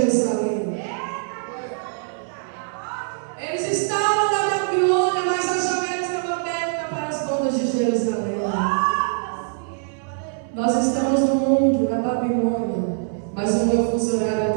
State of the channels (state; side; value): silent; left; 63 dB below the other